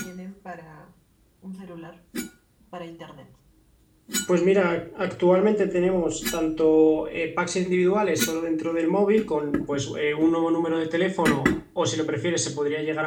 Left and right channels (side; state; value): both; identical; correlation 1.00